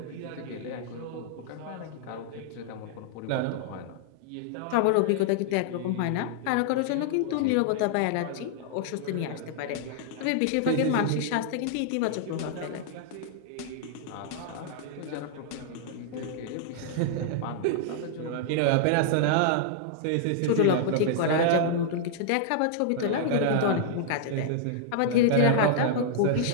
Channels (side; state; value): both; different; correlation -0.01